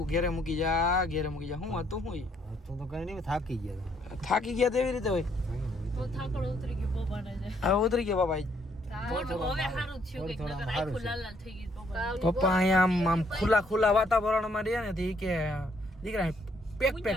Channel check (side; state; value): both; normal; correlation 0.69